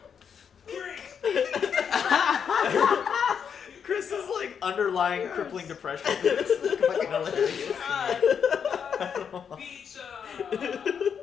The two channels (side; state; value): right; quieter; 7.3 dB